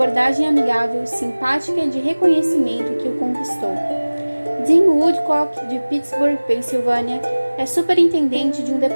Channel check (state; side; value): inverted; both; correlation -1.00